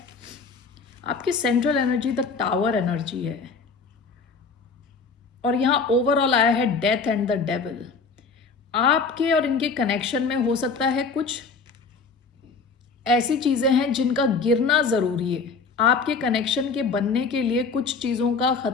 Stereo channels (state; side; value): quieter; right; 4.8 dB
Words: आपकी central energy the tower energy है और यहाँ ओवरऑल आया है डेथ एंड द डेविल। आपके और इनके कनेक्शन में हो सकता है कुछ ऐसी चीजें हैं जिनका गिरना जरूरी है। आपके कनेक्शन के बनने के लिए कुछ चीजों का